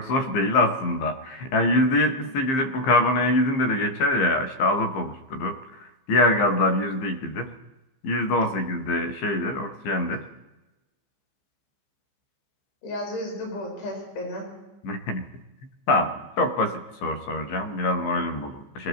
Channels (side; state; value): right; late; 15 ms